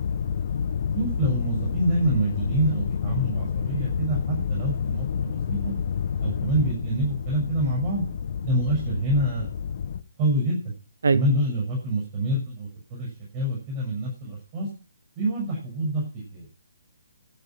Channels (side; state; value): both; inverted; correlation -0.45